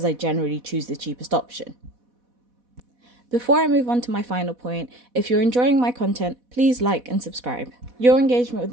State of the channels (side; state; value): left; late; 4.1 ms